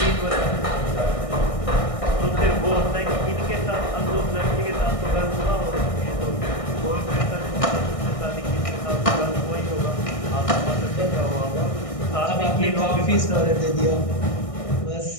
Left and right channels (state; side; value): late; right; 1.6 ms